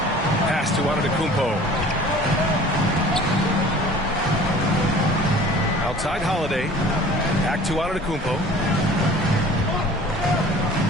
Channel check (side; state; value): both; normal; correlation 0.46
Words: Pass to Antetokounmpo. Outside Holiday. Back to Antetokounmpo.